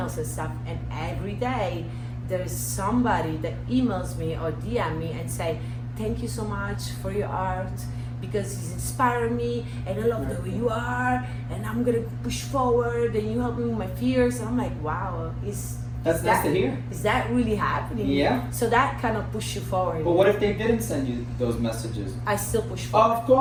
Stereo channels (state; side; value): identical; both; correlation 1.00